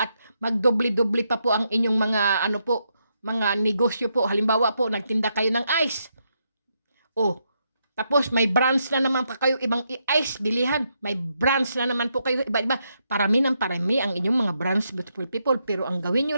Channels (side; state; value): both; inverted; correlation -0.80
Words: magdoble-doble pa po ang inyong mga ano po, mga negosyo po. Halimbawa po, nagtinda kayo ng ice. Oh, tapos may brands na naman pa kayo ibang ice bilihan. May brands na naman po kayo iba-iba. Parami ang inyong mga brands, beautiful people. Pero ang gawin nyo